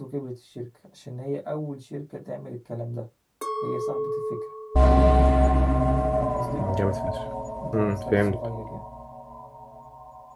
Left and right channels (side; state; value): both; identical; correlation 1.00